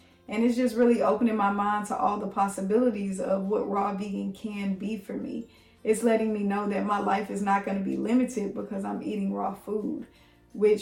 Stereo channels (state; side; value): identical; both; correlation 1.00